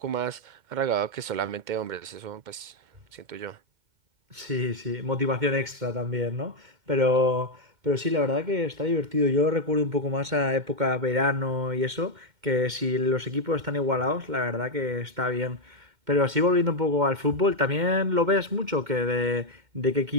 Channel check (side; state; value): left; late; 2.1 ms